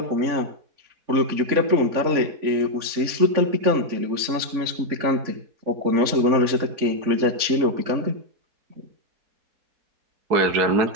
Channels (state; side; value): late; left; 3.6 ms